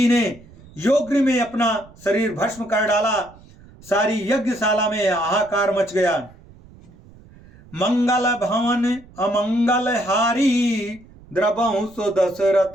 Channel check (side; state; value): right; noise; rumble, 24 dB below the sound